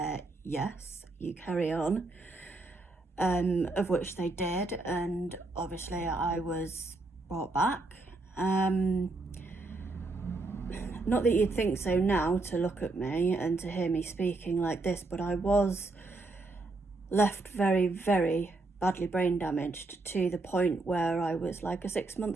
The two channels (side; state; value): left; quieter; 3.2 dB